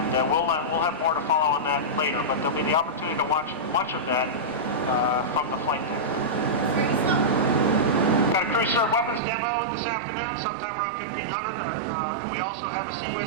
we'll have more to follow on that later, but there'll be the opportunity to watch much of that from the flight deck. Got a crew served weapons demo this afternoon, sometime around 1500, and we also have a Sea Whiz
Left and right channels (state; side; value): drops out; left; at 9.2 s